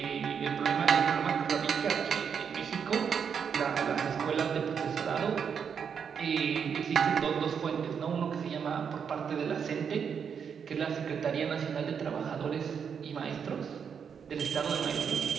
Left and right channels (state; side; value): quieter; left; 7.0 dB